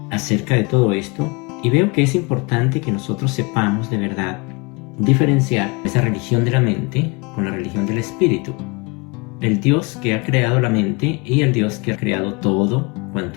acerca de todo esto y veo que es importante que nosotros sepamos de verdad diferenciar esa religión de la mente con la religión del espíritu. El Dios que ha creado la mente y el Dios que ha creado todo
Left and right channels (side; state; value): right; quieter; 28.3 dB